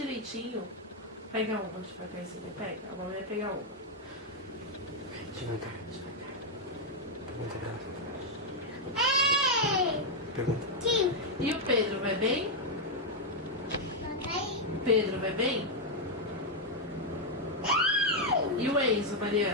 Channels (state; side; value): normal; both; correlation 0.00